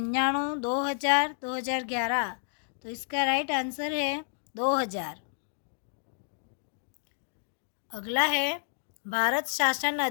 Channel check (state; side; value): silent; right; digital silence